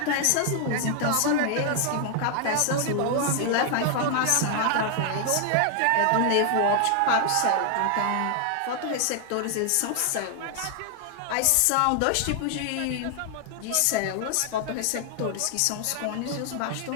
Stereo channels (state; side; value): different; both; correlation 0.00